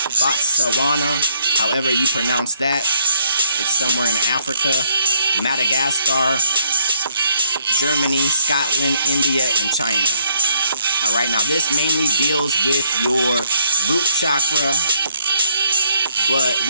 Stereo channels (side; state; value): both; inverted; correlation -0.69